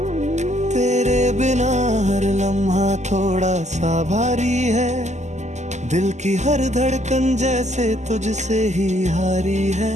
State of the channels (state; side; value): late; left; 0.33 ms